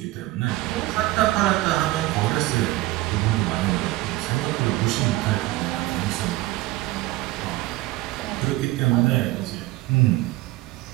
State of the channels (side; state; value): left; quieter; 18.2 dB